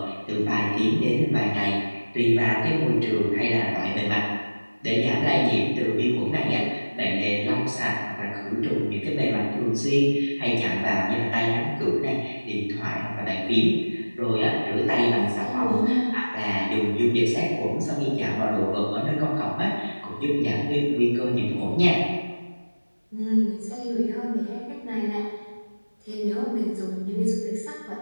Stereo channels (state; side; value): inverted; both; correlation -1.00